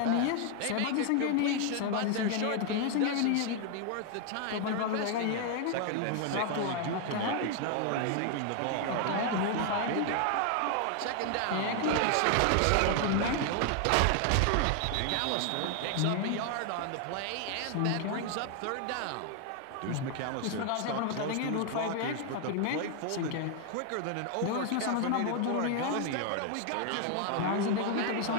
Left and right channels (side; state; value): both; different; correlation 0.00